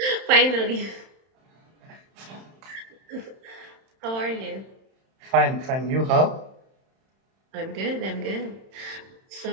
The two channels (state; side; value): late; left; 31 ms